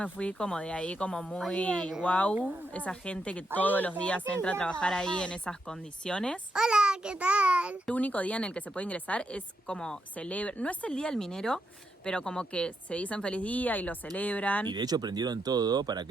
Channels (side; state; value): both; normal; correlation 0.82